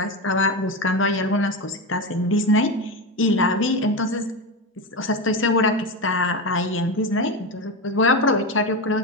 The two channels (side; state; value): both; normal; correlation 0.17